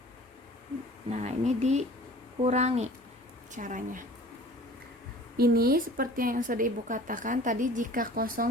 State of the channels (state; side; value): normal; both; correlation 0.46